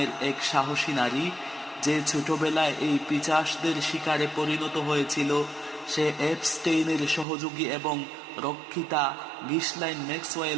এক সাহসী নারী, যে ছোটবেলায় এই পিশাচদের শিকারে পরিণত হয়েছিল, সে এপস্টেইনের সহযোগী এবং রক্ষিতা গিসলাইন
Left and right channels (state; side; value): drops out; left; at 7.2 s